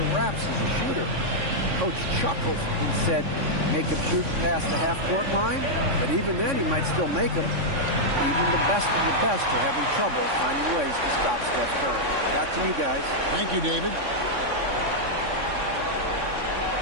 wraps as a shooter. Coach chuckled and said, make him shoot past the half-court line, but even then he might still make them. Even the best of the best are having trouble finding ways to stop Steph Curry. Back to you guys. Thank you, David.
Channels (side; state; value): left; late; 3.6 ms